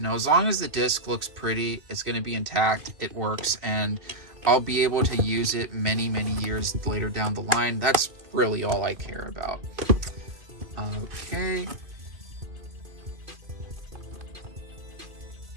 know, as long as the disc looks pretty, it's going to be intact, it works, and I'll be able to use it many, many years later down the line. That's really all I care about. Okay.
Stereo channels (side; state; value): left; late; 2.5 ms